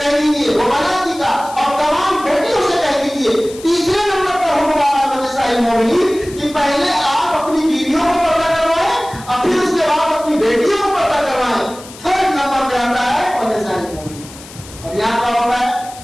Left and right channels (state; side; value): noise; left; hiss, 18 dB below the sound